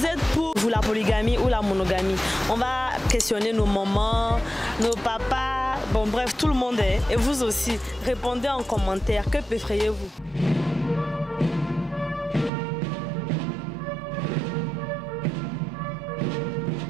êtes pour la polygamie ou la monogamie? On va questionner nos mamans, nos papas, bon bref, tout le monde est. Et vous aussi, répondez en commentaire, que préférez-vous?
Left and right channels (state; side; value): drops out; left; at 12.5 s